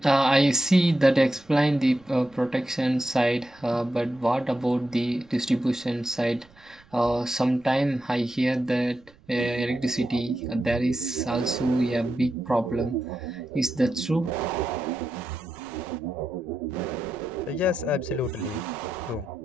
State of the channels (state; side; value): noise; right; rumble, 28 dB below the sound